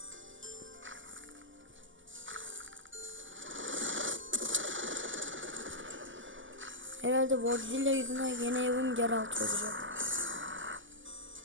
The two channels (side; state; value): left; late; 0.56 ms